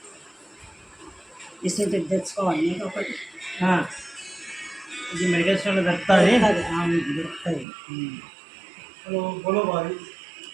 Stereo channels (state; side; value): drops out; left; at 7.7 s